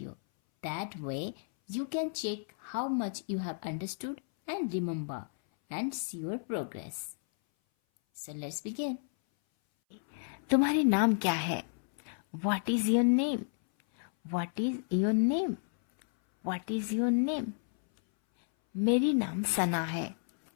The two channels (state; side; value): silent; right; 56 dB below the other